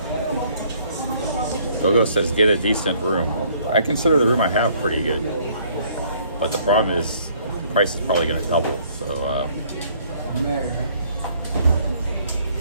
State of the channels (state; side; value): inverted; both; correlation -0.62